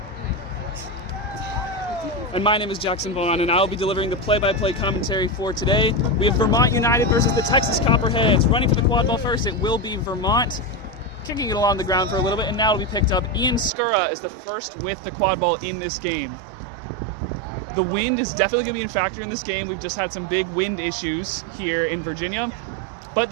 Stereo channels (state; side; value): drops out; left; at 13.7 s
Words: And my name is Jackson Vaughn, and I'll be delivering the play-by-play commentary for today. We have Vermont United versus the Texas Copperheads. Running for the quad ball first, it will be Vermont. Kicking it along the ground for a little bit, and now it'll be picked up. Ian Skura is the first with the quad ball in this game. The wind is definitely going to be a factor in this game. We've just had some big wind issues here in Virginia, but